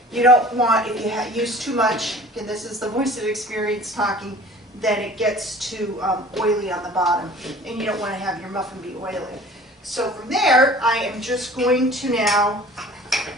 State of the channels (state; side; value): normal; both; correlation 0.46